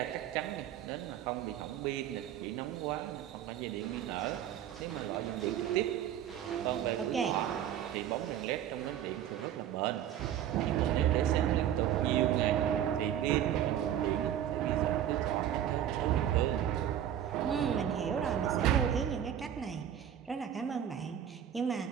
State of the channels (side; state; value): left; quieter; 10.5 dB